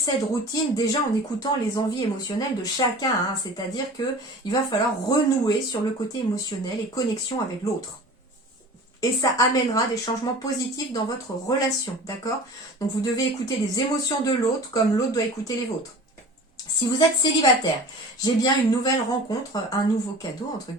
routine déjà en écoutant les envies émotionnelles de chacun, hein, c'est-à-dire qu'il va falloir renouer sur le côté émotionnel et connexion avec l'autre. Et ça amènera des changements positifs dans votre relation, d'accord? Donc vous devez écouter les émotions de l'autre comme l'autre doit écouter les vôtres. Si vous êtes célibataire, j'ai bien une nouvelle rencontre, un nouveau cadeau, entre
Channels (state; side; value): normal; both; correlation 0.40